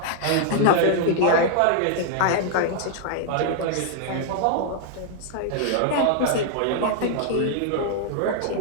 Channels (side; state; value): both; different; correlation -0.01